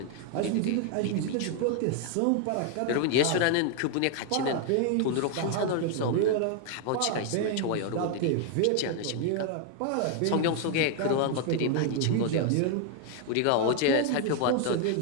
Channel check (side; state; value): both; different; correlation 0.00